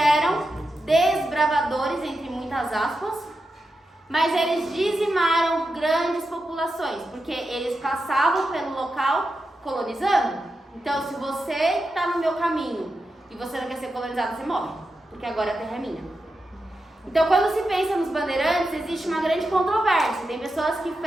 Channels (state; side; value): normal; both; correlation 0.89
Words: desbravadores, entre muitas aspas, mas eles dizimaram grandes populações, porque eles passavam pelo local colonizando. Então, se você está no meu caminho e você não quer ser colonizado, você morre, porque agora a terra é minha. Então, quando se pensa nos bandeirantes, existe uma grande controvérsia. Tem pessoas que